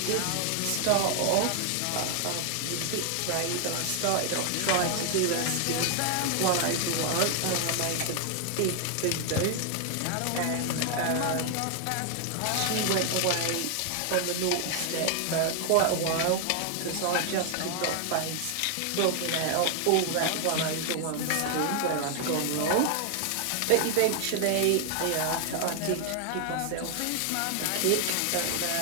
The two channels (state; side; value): different; both; correlation 0.00